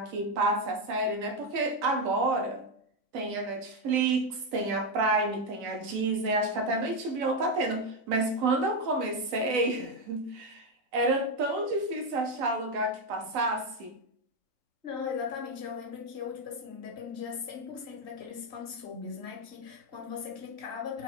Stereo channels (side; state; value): left; late; 4.0 ms